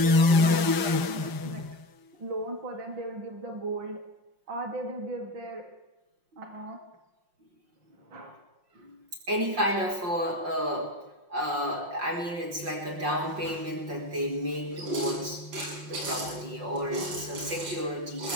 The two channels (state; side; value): late; left; 5.6 ms